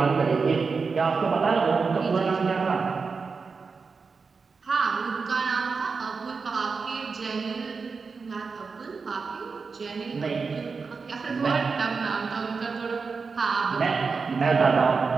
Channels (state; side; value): quieter; left; 4.9 dB